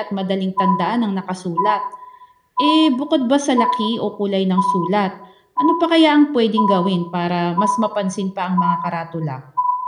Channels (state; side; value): identical; both; correlation 1.00